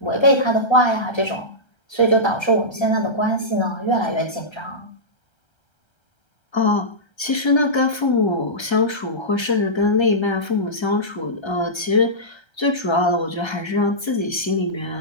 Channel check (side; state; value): right; late; 1.3 ms